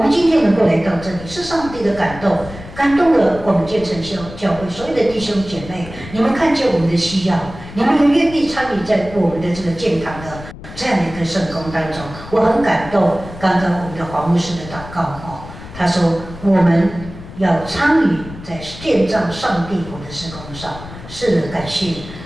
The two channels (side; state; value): left; noise; rumble, 14 dB below the sound